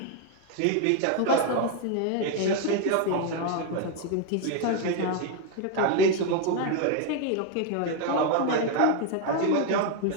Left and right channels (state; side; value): different; both; correlation 0.01